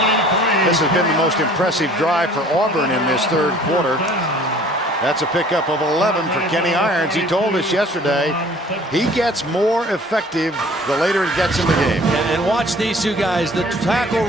This has been the most impressive drive for Auburn in this third quarter. That's a pickup of 11 for Kenny Irons. He told us yesterday he gets more effective the later it gets in the game. And watch these two guys, the tackle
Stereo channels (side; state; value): both; normal; correlation 0.51